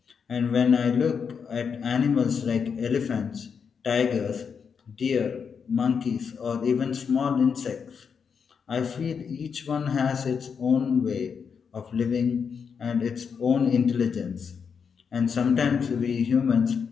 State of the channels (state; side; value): quieter; right; 6.4 dB